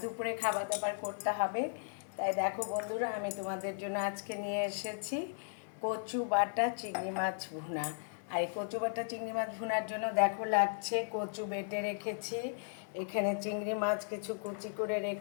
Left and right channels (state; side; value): silent; right; 54 dB below the other